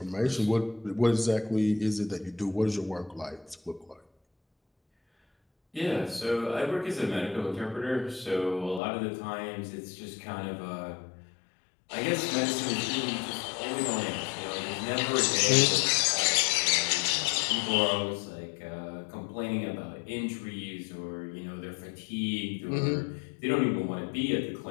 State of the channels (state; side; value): drops out; right; at 8.8 s